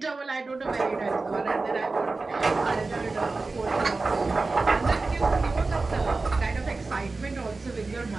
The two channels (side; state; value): left; quieter; 3.7 dB